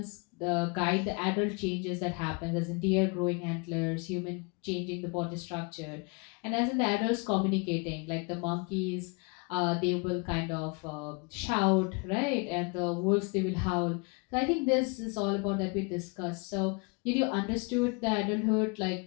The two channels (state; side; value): quieter; right; 31.4 dB